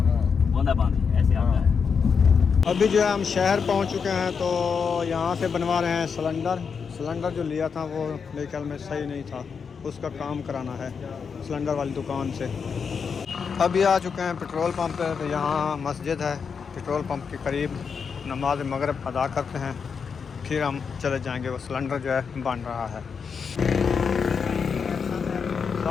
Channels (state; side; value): quieter; right; 6.0 dB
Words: हाँ। बूंदा बांदी ऐसे आता है। अभी जो है हम शहर पहुंच चुके हैं, तो यहाँ से बनवा रहे हैं सिलेंडर जो लिया था वो मेरे ख्याल में सही नहीं था, उसका काम कराना है सिलेंडर वाली दुकान से। अभी आ चुके हैं पेट्रोल पंप पे, तो यहाँ मस्जिद है, पेट्रोल पंप के करीब नमाज मगरिब अदा करते हैं, फिर हम चले जाएंगे। वो सिलेंडर जो है बन रहा है।